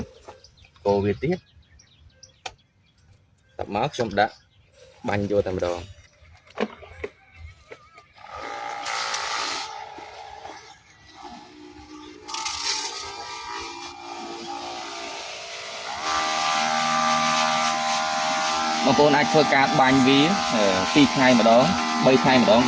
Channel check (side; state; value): both; identical; correlation 1.00